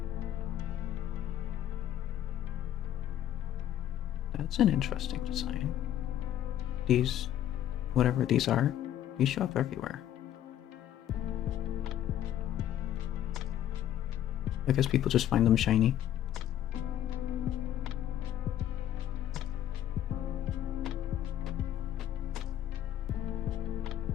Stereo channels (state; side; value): quieter; right; 11.6 dB